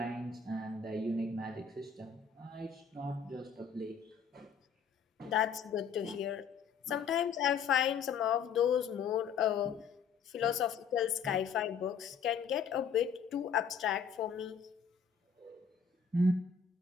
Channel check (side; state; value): right; quieter; 6.4 dB